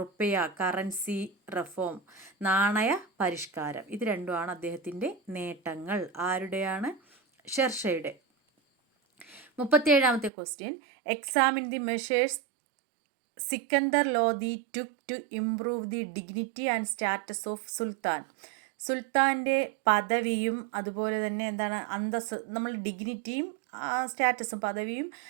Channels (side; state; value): left; drops out; at 10.3 s